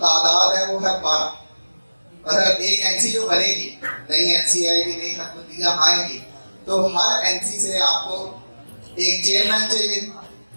تعداد ہے وہ ہے 12. مطلب ایک این سی جو بنے گی نئی این سی آئے گی نئی حکومتیاں آئیں گی تو ہر این سی سے آپ کو ایک چیئرمین چاہیے,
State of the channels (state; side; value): inverted; both; correlation -1.00